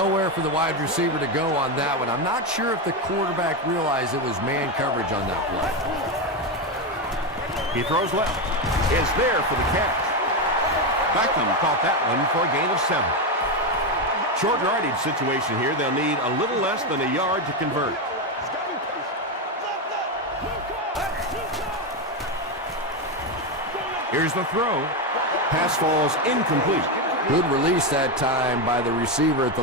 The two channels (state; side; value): normal; both; correlation 0.10